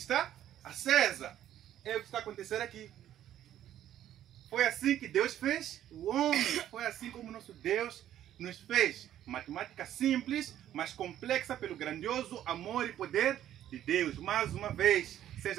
acesa. É o que está acontecendo aqui. Foi assim que Deus fez o homem. Foi assim como nosso Deus nos fez. Matemática simples, mas complexa pelo grandioso amor e poder de Deus. Mais uma vez,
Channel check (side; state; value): left; quieter; 11.6 dB